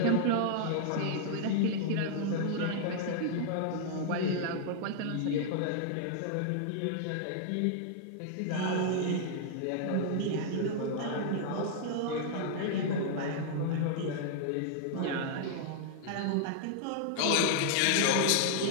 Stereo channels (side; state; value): both; different; correlation -0.01